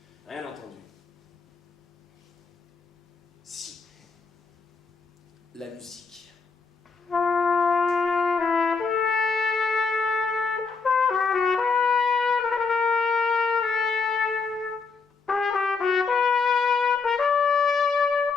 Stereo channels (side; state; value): right; quieter; 4.7 dB